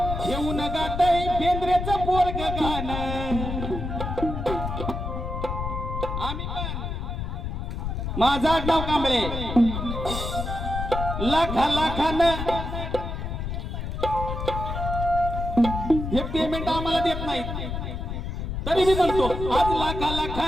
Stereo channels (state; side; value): noise; left; rumble, 4 dB below the sound